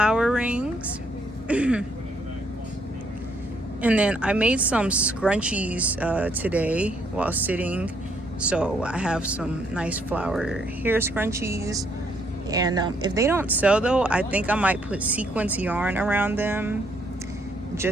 rings. And then I made some scrunchies today while sitting. So I have some nice flower hair scrunchies. And if they don't sell though, I think I might put sequence yarn around them,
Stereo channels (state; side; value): normal; both; correlation 0.71